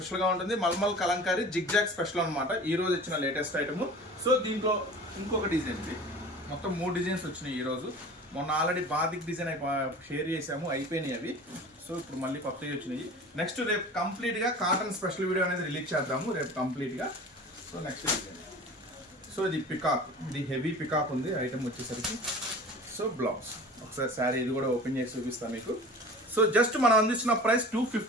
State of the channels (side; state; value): both; normal; correlation 0.40